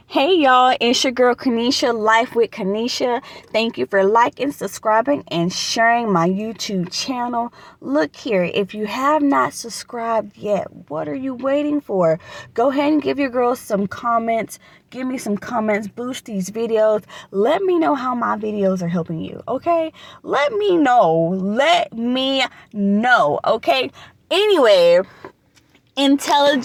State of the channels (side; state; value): both; identical; correlation 1.00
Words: Hey y'all, it's your girl Kanisha, Life with Kanisha. Thank you for liking, subscribing, and sharing my YouTube channel. Look here, if you have not subscribed yet, what are you waiting for? Go ahead and give your girl some comments. Give me some comments, boost these videos. Let me know how my videos are helping you, okay? Let me know, okay? Anyway,